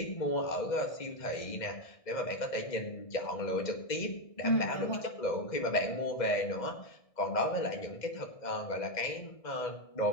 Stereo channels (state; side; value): late; right; 1.6 ms